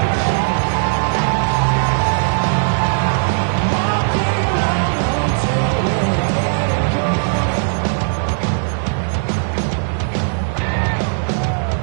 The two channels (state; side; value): silent; left; digital silence